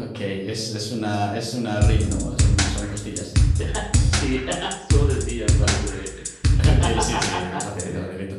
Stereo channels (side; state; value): both; identical; correlation 1.00